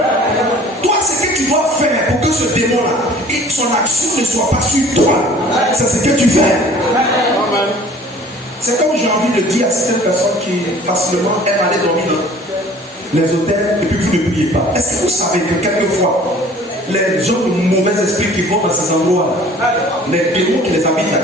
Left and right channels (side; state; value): both; normal; correlation 0.49